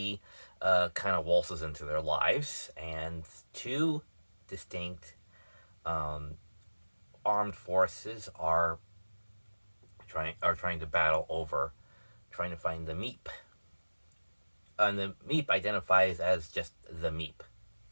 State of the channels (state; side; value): inverted; both; correlation -1.00